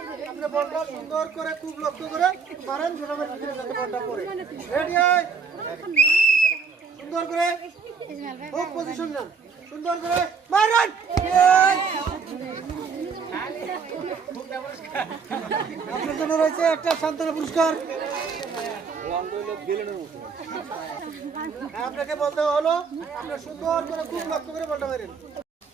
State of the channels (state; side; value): quieter; left; 5.6 dB